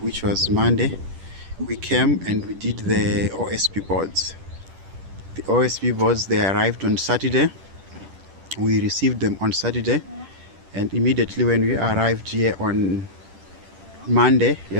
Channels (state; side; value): late; left; 10 ms